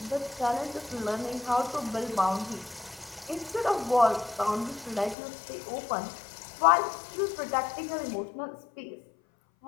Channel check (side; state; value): right; drops out; at 5.2 s